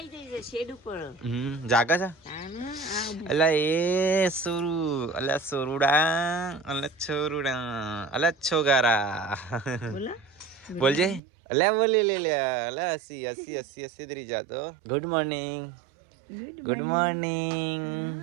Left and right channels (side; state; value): left; drops out; at 11.2 s